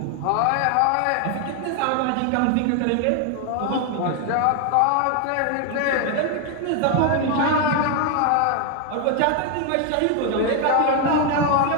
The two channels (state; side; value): different; both; correlation 0.01